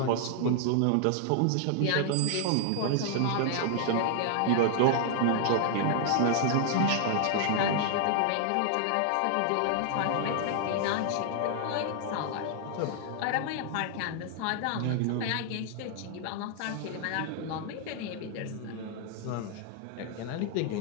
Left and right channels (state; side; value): different; both; correlation 0.00